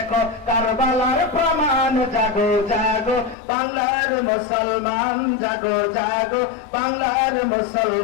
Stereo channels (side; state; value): right; drops out; at 3.4 s